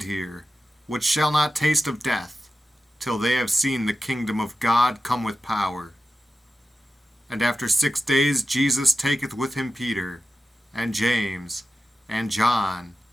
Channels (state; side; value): normal; both; correlation 0.92